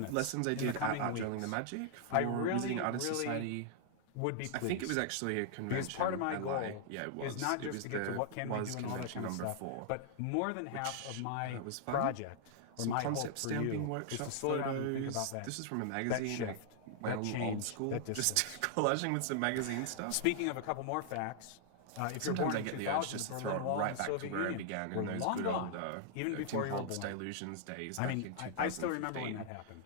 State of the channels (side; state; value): both; different; correlation -0.01